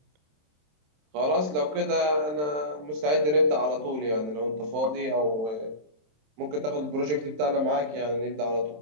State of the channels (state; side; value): late; left; 27 ms